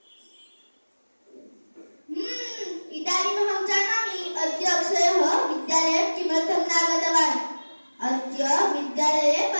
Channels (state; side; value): inverted; both; correlation -1.00